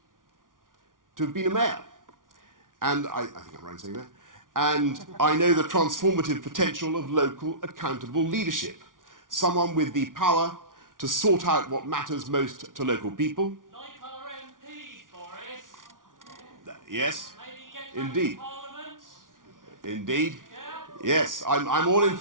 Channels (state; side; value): late; left; 0.89 ms